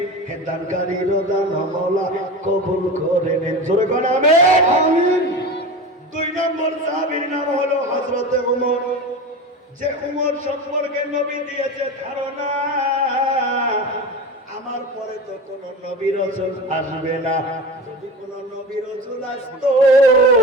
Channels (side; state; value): both; normal; correlation 0.29